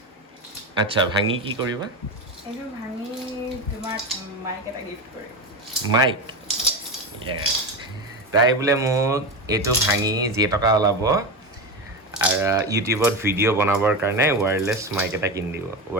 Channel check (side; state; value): both; normal; correlation 0.20